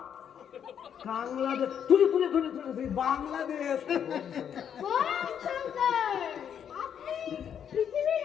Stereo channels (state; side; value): quieter; right; 8.5 dB